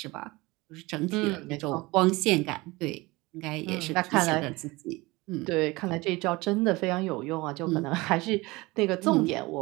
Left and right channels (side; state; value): left; quieter; 22.3 dB